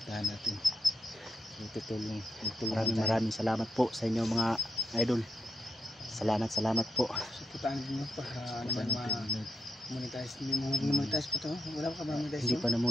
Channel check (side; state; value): both; normal; correlation 0.82